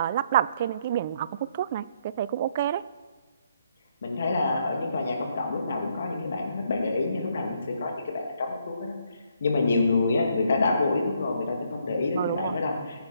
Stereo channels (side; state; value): both; inverted; correlation -0.71